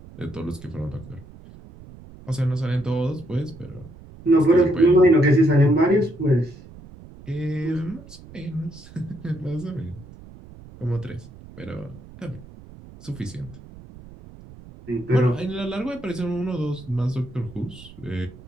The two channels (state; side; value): noise; right; rumble, 19 dB below the sound